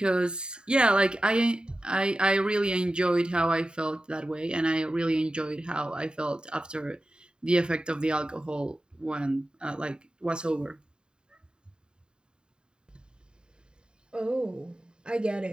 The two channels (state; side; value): late; left; 0.049 ms